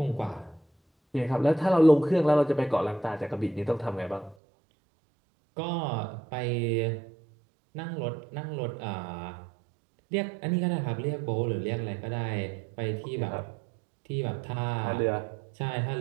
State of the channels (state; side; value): drops out; left; at 4.4 s